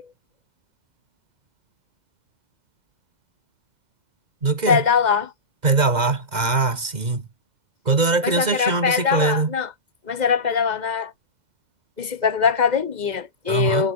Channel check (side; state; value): left; late; 2.0 ms